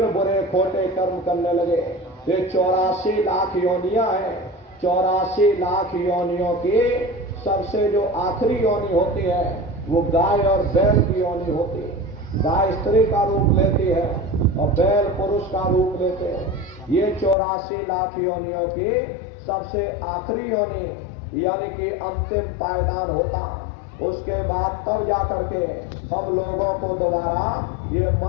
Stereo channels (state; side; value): drops out; right; at 17.4 s